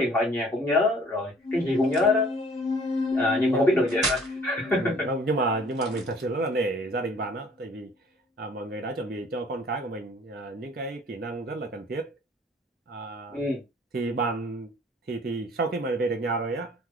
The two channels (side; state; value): both; normal; correlation 0.54